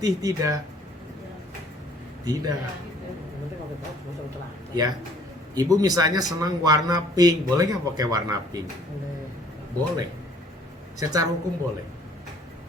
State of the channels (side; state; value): both; normal; correlation 0.58